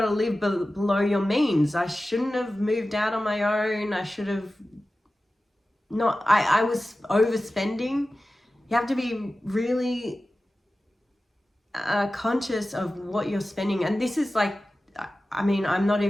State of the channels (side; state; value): both; normal; correlation 0.95